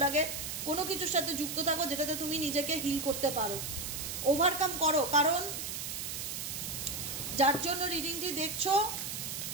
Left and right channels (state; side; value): noise; right; hiss, 5 dB below the sound